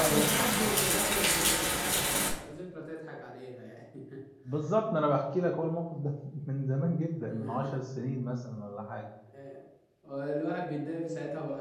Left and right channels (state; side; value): identical; both; correlation 1.00